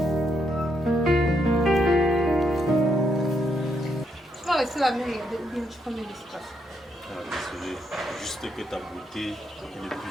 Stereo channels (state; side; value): normal; both; correlation 0.78